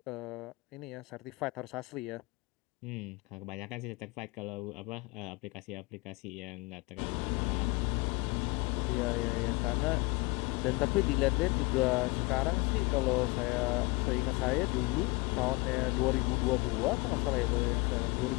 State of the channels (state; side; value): quieter; right; 24.3 dB